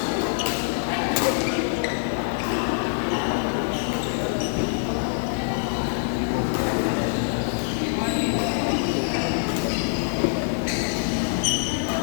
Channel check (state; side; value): silent; right; 62 dB below the other